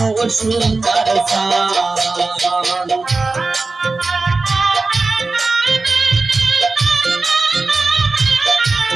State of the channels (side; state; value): left; quieter; 3.7 dB